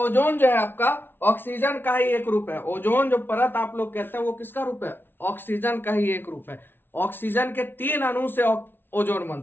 जो है आपका ऑक्सीजन का ही एक रूप है। ओजोन जो परत आप लोग कहते हैं वो किसका रूप है, ऑक्सीजन का ही एक रूप है। ऑक्सीजन के 3 अणु से ओजोन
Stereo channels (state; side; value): late; right; 0.10 ms